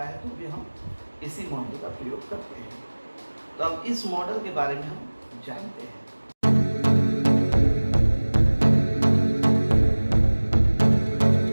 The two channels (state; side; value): inverted; both; correlation -1.00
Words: है तो भी हम इसी मॉडल का प्रयोग करते हैं। तो अब इस मॉडल के बारे में हम जानते हैं।